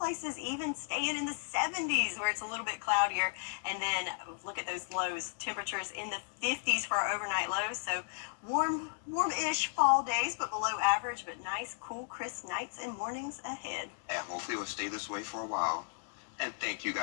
even staying in the 70s where it's a little bit cloudier. And then look at those lows. Temperatures in the 50s for our overnight lows. So warm-ish fall days, but below average. But nice, cool, crisp nights and mornings ahead. And hopefully it will stay this way for a while. And thank you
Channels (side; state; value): right; silent; digital silence